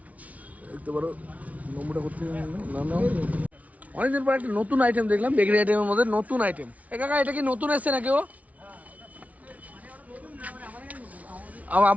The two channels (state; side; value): late; left; 0.069 ms